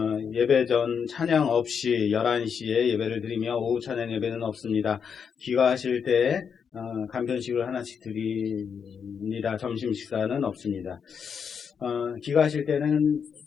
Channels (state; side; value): quieter; right; 6.8 dB